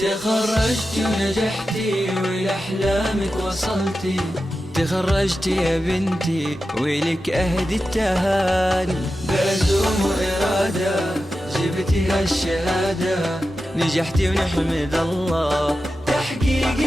تخرجتي ونجحتي ولأحلامك وصلتي، تخرجتي يا بنتي ولك أهدي التهاني، بعزوم وإرادة جبتي هالشهادة، نجحتي ونحمد الله تحقيق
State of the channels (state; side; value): normal; both; correlation 0.92